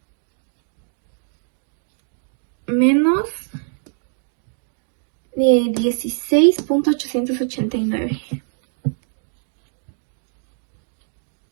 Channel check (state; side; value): silent; left; 63 dB below the other